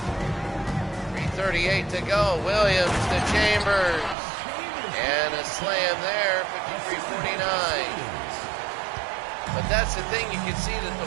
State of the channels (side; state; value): left; drops out; at 4.2 s